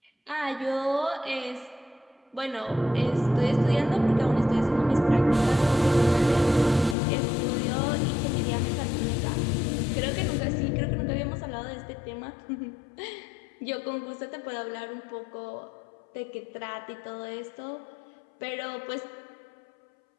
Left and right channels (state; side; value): drops out; right; at 7.0 s